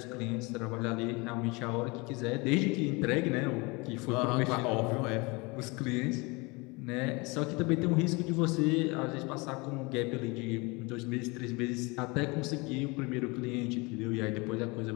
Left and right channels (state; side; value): quieter; right; 26.8 dB